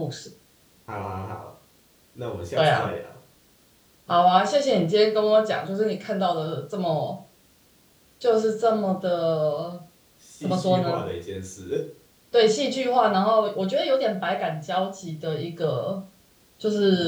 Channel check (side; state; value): both; identical; correlation 1.00